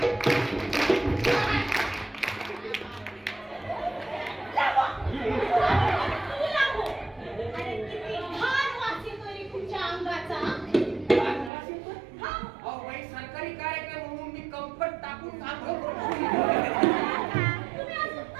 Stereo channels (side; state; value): left; drops out; at 11.5 s